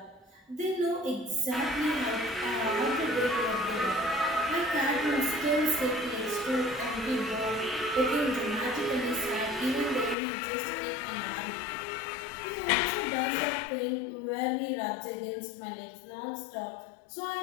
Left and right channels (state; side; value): drops out; right; at 10.2 s